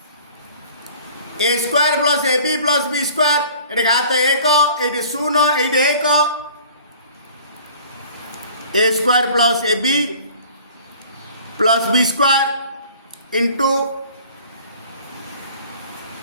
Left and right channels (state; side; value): inverted; both; correlation -0.49